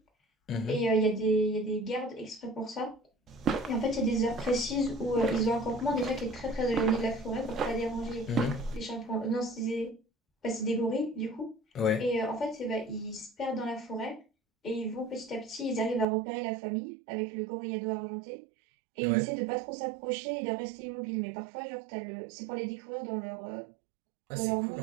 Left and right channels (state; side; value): drops out; left; at 16.1 s